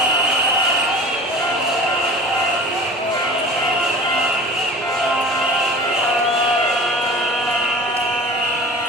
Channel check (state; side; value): normal; both; correlation 0.39